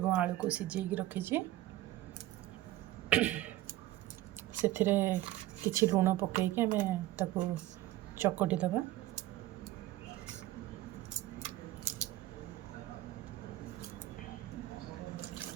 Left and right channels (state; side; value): quieter; left; 15.3 dB